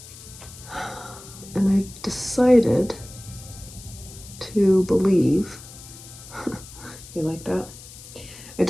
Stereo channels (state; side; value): noise; left; hiss, 17 dB below the sound